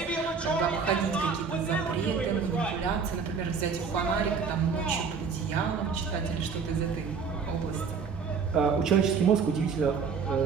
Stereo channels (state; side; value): quieter; left; 5.6 dB